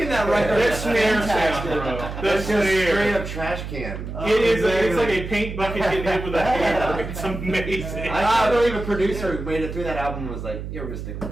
that record That is snare fantastic. sound, bro. That That's just straight snare. up trash can. It's like a paint bucket getting hit with a hammer. It's amazing. I can't believe a producer who made it through that album was like, "Yeah, we're gonna stick with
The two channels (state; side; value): noise; right; hum, 8 dB below the sound